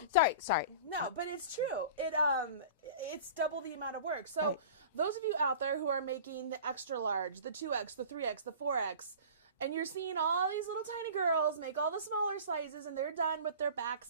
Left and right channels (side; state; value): both; inverted; correlation -0.39